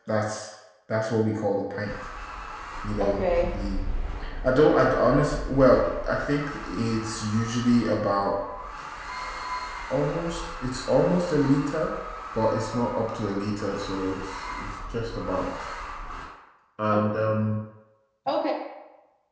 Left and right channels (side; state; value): both; identical; correlation 1.00